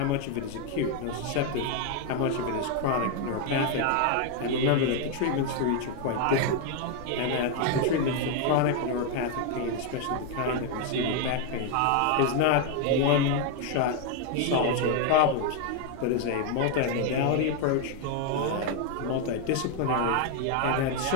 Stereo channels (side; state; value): both; different; correlation 0.01